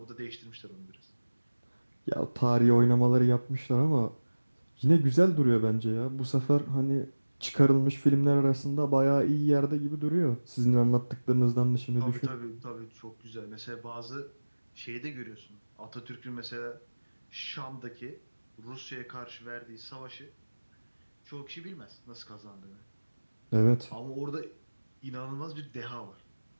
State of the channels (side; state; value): both; inverted; correlation -1.00